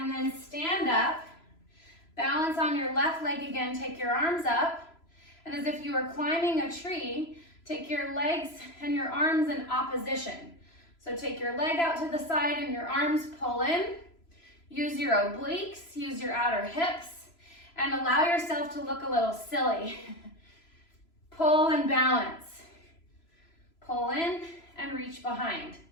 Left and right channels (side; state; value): right; late; 3.0 ms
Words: then stand up, balance on your left leg again, take your arms up, and as if you were climbing a tree, take your legs and your arms in opposition. So take your leg out to the side and your arms pull in. Use your obliques, use your outer hips, and allow yourself to look a little silly. Pull and balance. Pull in and reach behind.